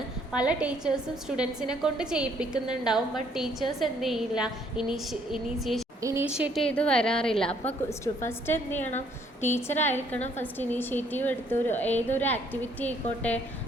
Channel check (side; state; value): both; normal; correlation 0.65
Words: പല ടീച്ചേഴ്സും സ്റ്റുഡൻസിനെ കൊണ്ട് ചെയ്യിപ്പിക്കുന്നുണ്ടാവും, ബട്ട് ടീച്ചേഴ്സ് എന്ത് ചെയ്യില്ല, ഇനീഷ്യേറ്റ് ചെയ്ത് വരാറില്ല. അപ്പോൾ ഫസ്റ്റ് എന്ത് ചെയ്യണം, ടീച്ചറായിരിക്കണം ഫസ്റ്റ് ഇനീഷ്യേറ്റീവ് എടുത്ത് ഏതൊരു ആക്ടിവിറ്റി ആയിക്കോട്ടെ,